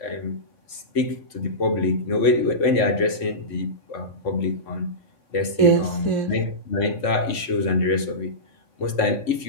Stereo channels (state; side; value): late; right; 3.6 ms